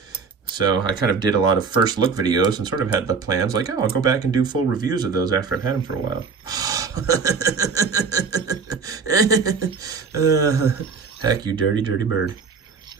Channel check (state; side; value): quieter; left; 5.2 dB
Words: So I kind of did a lot of first look videos and sort of had the plans like, oh, I'll go back and do full reviews of those after I've had them for a while. Heck, you dirty, dirty bird.